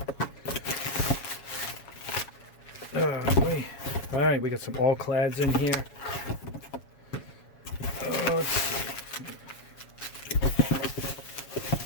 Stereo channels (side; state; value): right; late; 7.2 ms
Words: Alright, we got some Alclads in here. Let's see.